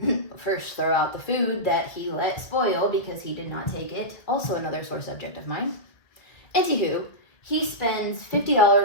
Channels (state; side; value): late; right; 1.9 ms